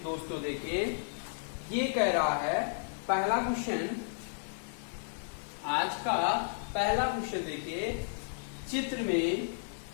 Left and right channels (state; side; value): silent; right; digital silence